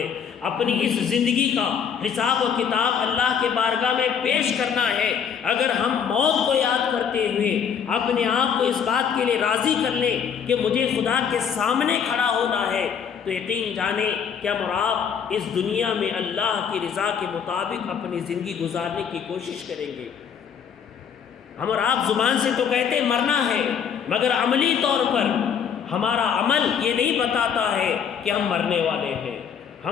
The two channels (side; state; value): right; quieter; 7.4 dB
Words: اپنی اس زندگی کا حساب و کتاب اللہ کے بارگاہ میں پیش کرنا ہے۔ اگر ہم موت کو یاد کرتے ہوئے اپنے آپ کو اس بات کے لیے راضی کر لیں کہ مجھے خدا کے سامنے کھڑا ہونا ہے، تو یقین جانیں کہ ہم اور آپ اس دنیا میں اللہ کی رضا کے مطابق اپنی زندگی گزارنے کی کوشش کریں گے۔ ہم اور آپ زبان سے تو کہتے مرنا ہے، مگر عملی طور پر ہمارا عمل یہ نہیں بتاتا ہے کہ ہم مرنے والے ہیں۔